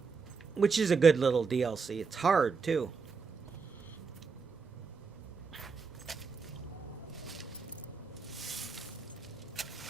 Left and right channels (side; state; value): left; quieter; 5.2 dB